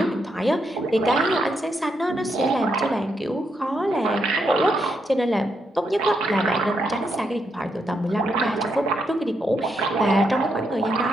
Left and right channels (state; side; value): normal; both; correlation 0.79